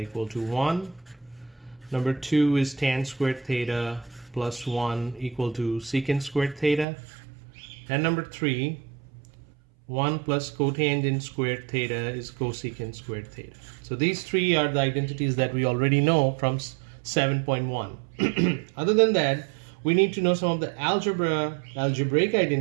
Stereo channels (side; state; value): left; drops out; at 6.9 s